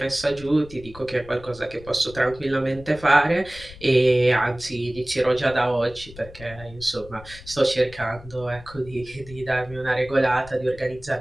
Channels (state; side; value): noise; left; rumble, 18 dB below the sound